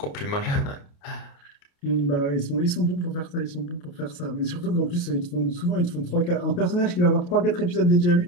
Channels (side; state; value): right; late; 29 ms